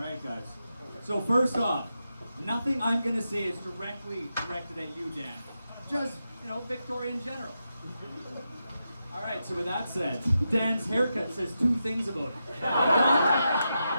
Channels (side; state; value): both; inverted; correlation -0.87